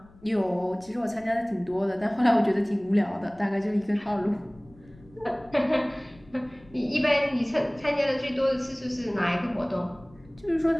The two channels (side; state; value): left; noise; rumble, 25 dB below the sound